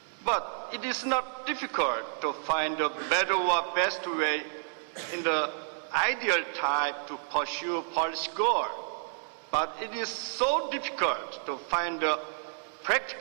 But it is not difficult to find a better or best way in the ideal type to pursue policy goal. But it is so difficult to find a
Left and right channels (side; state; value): left; silent; digital silence